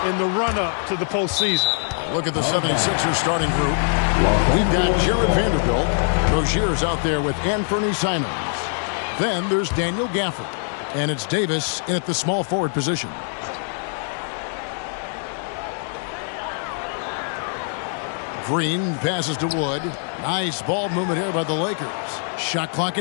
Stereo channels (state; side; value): silent; right; 64 dB below the other